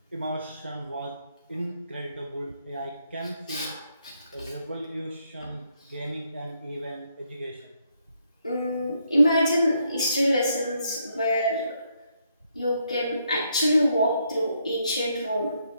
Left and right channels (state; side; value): inverted; both; correlation -0.75